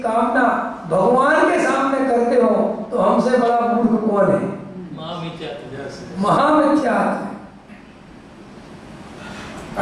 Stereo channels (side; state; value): both; identical; correlation 1.00